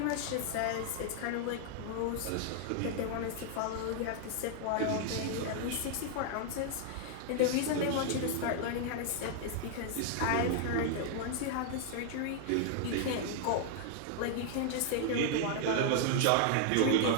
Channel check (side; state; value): both; different; correlation 0.00